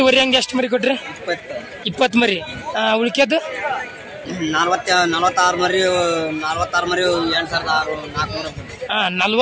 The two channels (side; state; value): both; identical; correlation 1.00